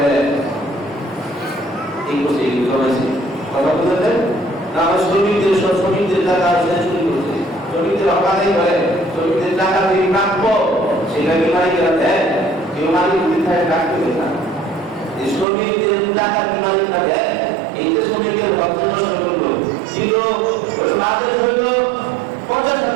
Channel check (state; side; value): drops out; left; at 15.5 s